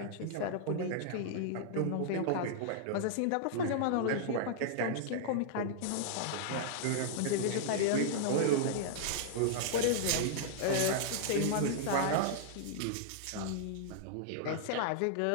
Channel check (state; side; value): different; both; correlation -0.01